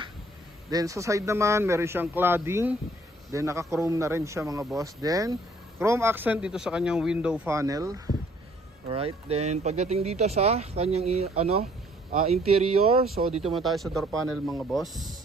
Then sa side naman, meron siyang cladding. Then naka-chrome na rin siya mga boss. Then chrome accent dito sa kanyang window panel. Alright. Then pagdating dito sa kanyang interior, so dito muna tayo sa door panel mga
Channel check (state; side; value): normal; both; correlation 0.61